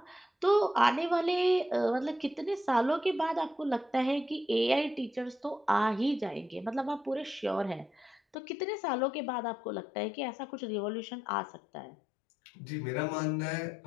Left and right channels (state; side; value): drops out; right; at 8.3 s